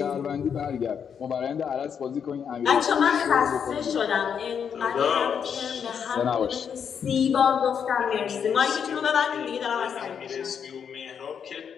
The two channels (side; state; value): right; quieter; 7.4 dB